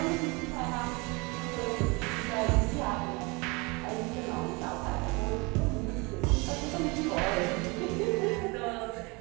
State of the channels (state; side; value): quieter; left; 27.5 dB